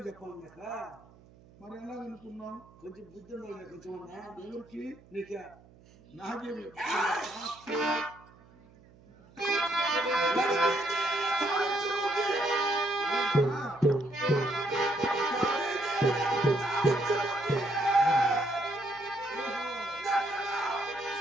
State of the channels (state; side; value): noise; right; hum, 25 dB below the sound